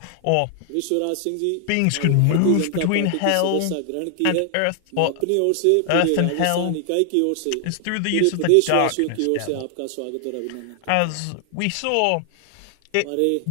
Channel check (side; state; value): both; different; correlation 0.00